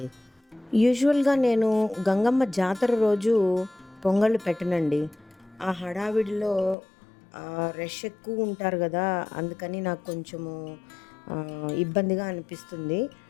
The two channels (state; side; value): drops out; right; at 6.8 s